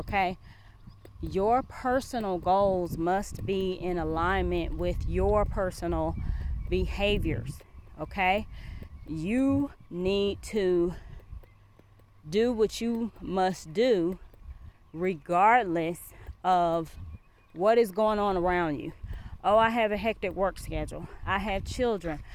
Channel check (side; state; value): both; identical; correlation 1.00